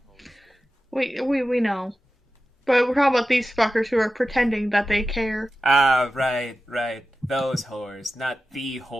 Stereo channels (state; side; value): normal; both; correlation 0.94